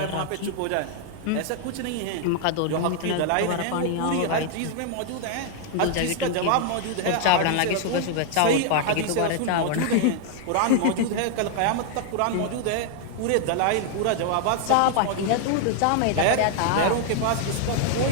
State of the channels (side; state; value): both; different; correlation 0.00